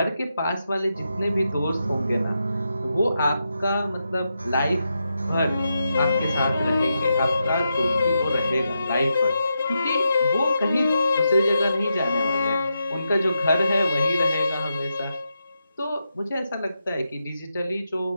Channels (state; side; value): inverted; both; correlation -0.86